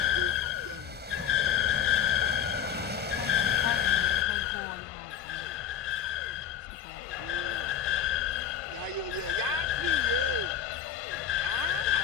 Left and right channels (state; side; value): quieter; right; 9.0 dB